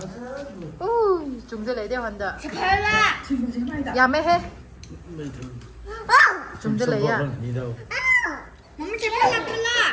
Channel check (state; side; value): identical; both; correlation 1.00